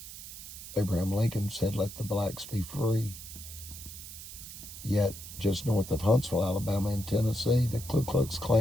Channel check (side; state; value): right; noise; hiss, 12 dB below the sound